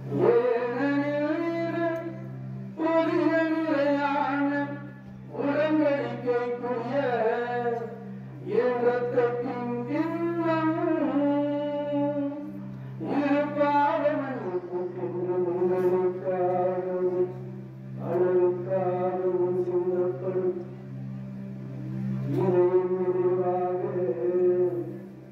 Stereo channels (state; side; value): identical; both; correlation 1.00